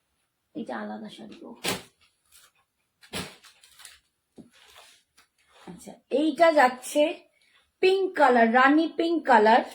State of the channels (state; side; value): identical; both; correlation 1.00